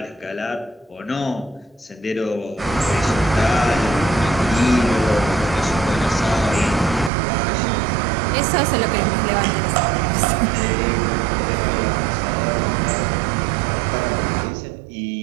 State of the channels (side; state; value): left; drops out; at 7.1 s